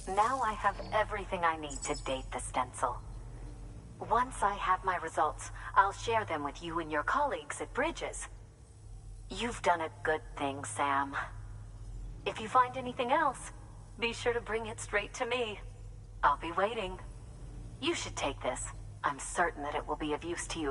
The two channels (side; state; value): both; identical; correlation 1.00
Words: Now I have everything I need to date the stencil. Once I have my results, I'll share them with you and your colleagues at Bridges. You've done a good thing, Sam. If you find anything else, be sure to bring it straight to me. I'll be waiting. You should take this. I'm certain that it will be of use to